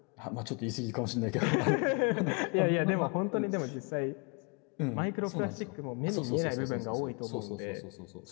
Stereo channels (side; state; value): right; quieter; 34.8 dB